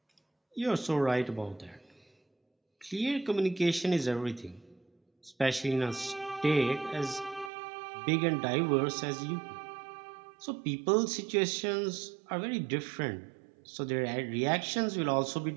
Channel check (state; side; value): drops out; left; at 7.5 s